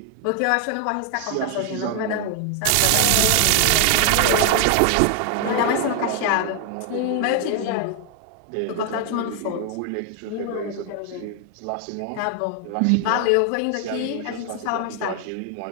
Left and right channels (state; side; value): different; both; correlation 0.00